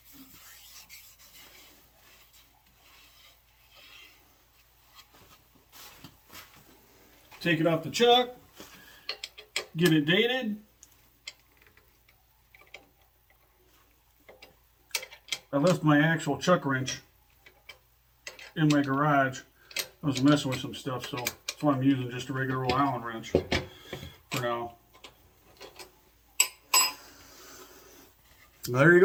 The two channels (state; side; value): identical; both; correlation 1.00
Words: Take it off the chuck, get it dated. I left my actual chuck wrench in my garage. I was messing with some stuff, so that's why I'm using just a regular old Allen wrench for now. There you